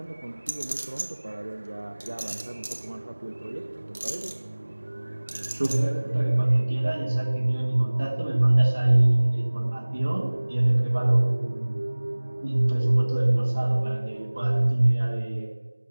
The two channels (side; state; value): both; inverted; correlation -1.00